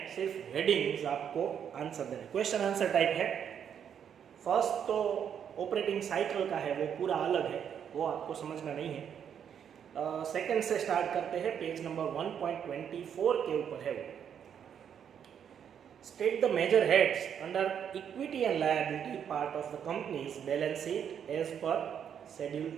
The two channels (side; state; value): left; quieter; 8.4 dB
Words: सिर्फ हेडिंग्स आपको आंसर देने, क्वेश्चन आंसर टाइप है। फर्स्ट तो ऑपरेटिंग साइकिल का है, वो पूरा अलग है, वो आपको समझना नहीं है। सेकंड से स्टार्ट करते हैं, पेज नंबर 1.24 के ऊपर है वो। State the major heads under equity and liability part of the company's balance sheet as per Schedule